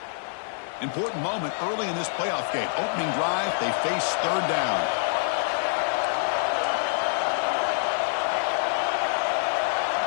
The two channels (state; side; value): silent; right; 61 dB below the other